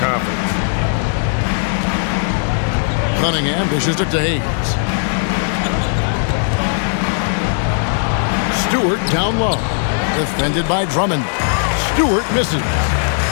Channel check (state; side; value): silent; right; digital silence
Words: Cunningham dishes it to Hayes. Stewart down low. Defended by Drummond. Stewart misses.